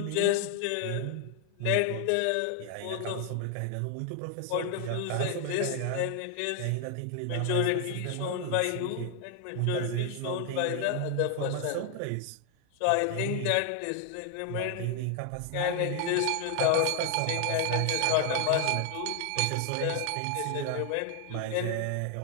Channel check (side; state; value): both; different; correlation 0.00